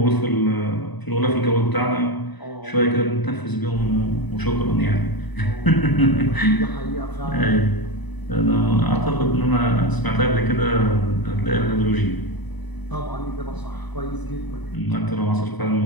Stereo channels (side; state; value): right; late; 1.0 ms